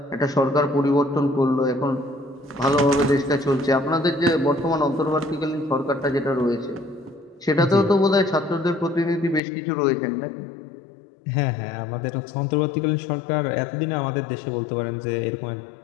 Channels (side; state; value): right; drops out; at 9.4 s